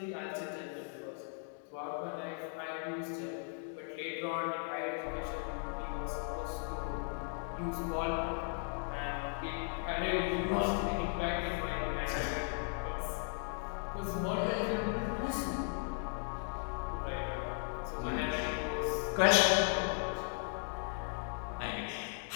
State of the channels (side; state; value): right; silent; 53 dB below the other